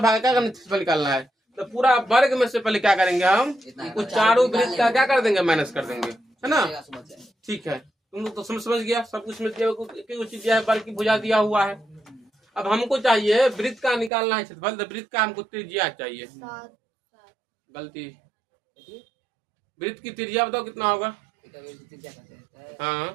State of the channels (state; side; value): drops out; left; at 14.1 s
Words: भाग का निकालना है। तो पूरा वर्ग में से पहले क्या करेंगे हम? वो चारों वृत्त का क्या कर देंगे? माइनस कर देंगे, है ना। ठीक है, तुम लोग तो समझ गया, सब कुछ में चीज दिया है, वर्ग की भुजा दिया हुआ है। अब हमको चाहिए वृत्त का निकालना है क्षेत्रफल। तो वृत्त का हमको त्रिज्या चाहिए। गलती, वृत्त की त्रिज्या बताओ कितना होगा?